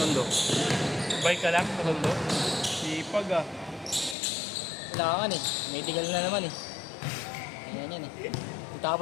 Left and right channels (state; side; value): drops out; right; at 4.2 s